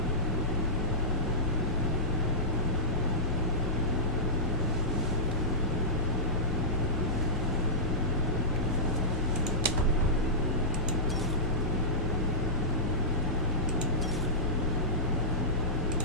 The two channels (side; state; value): both; normal; correlation -0.16